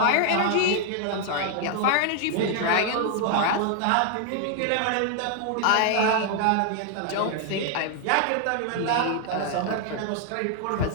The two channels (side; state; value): both; different; correlation 0.00